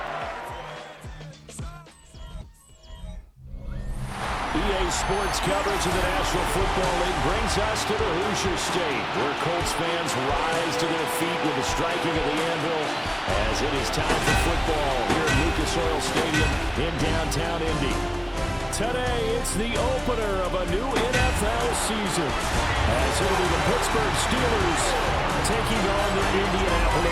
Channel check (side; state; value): both; identical; correlation 1.00